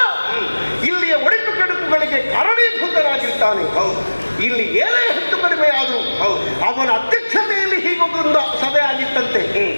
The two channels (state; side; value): inverted; both; correlation -1.00